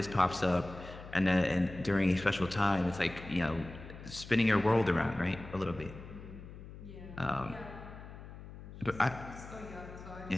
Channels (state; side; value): noise; left; hum, 14 dB below the sound